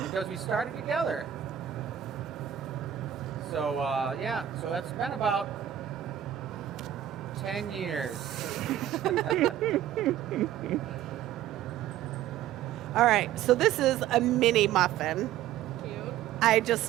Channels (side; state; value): left; quieter; 11.3 dB